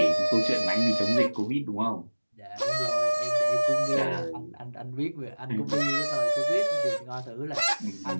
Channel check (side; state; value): both; inverted; correlation -1.00